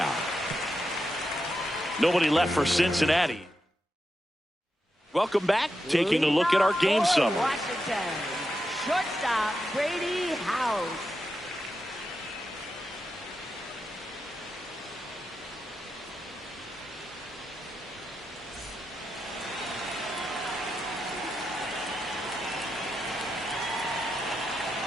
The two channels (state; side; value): normal; both; correlation 0.87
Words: Nobody left for Cincinnati. Welcome back. Taking a look at our game summary. Washington. Shortstop Brady House.